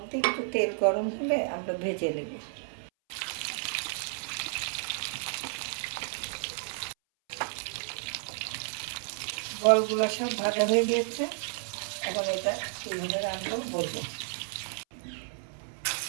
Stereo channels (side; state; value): left; silent; 57 dB below the other